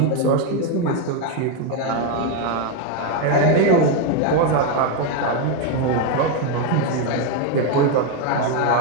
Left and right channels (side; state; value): both; different; correlation 0.02